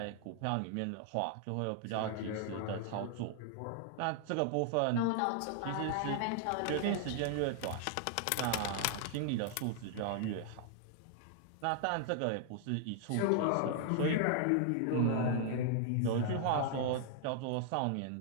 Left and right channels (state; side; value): different; both; correlation 0.00